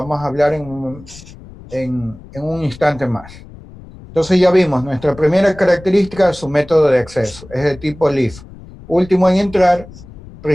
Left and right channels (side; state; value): left; noise; rumble, 19 dB below the sound